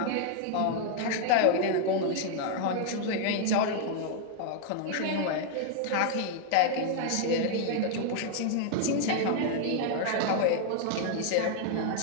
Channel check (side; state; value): both; different; correlation 0.00